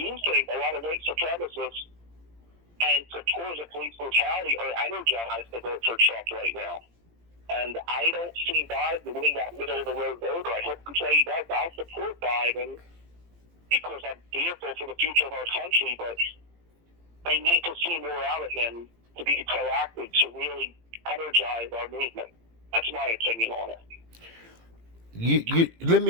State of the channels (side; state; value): left; late; 17 ms